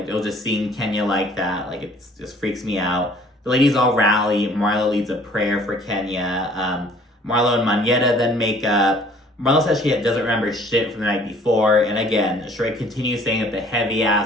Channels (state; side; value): normal; both; correlation 0.55